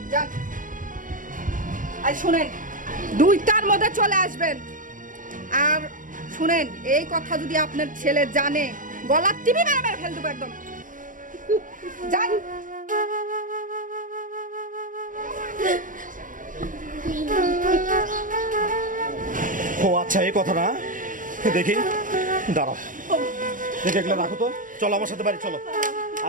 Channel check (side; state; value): left; late; 0.39 ms